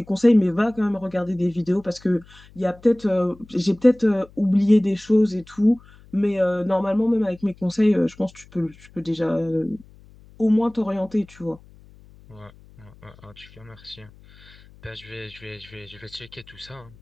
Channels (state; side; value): noise; left; hum, 24 dB below the sound